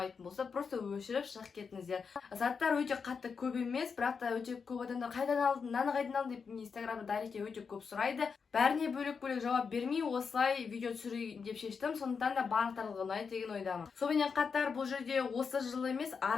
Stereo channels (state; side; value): quieter; right; 5.7 dB